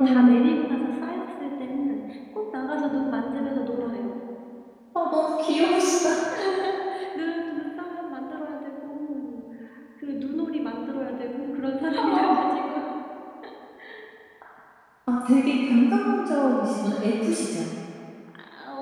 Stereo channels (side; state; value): both; identical; correlation 1.00